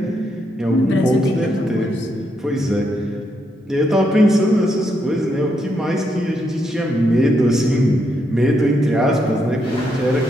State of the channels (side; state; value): both; normal; correlation 0.79